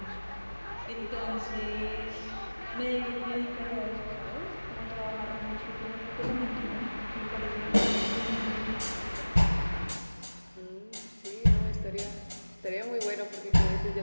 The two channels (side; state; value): both; inverted; correlation -1.00